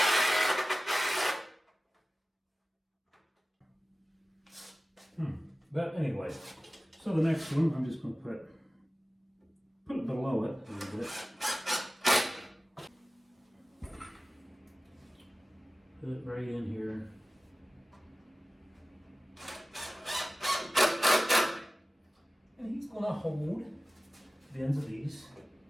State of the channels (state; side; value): normal; both; correlation 0.96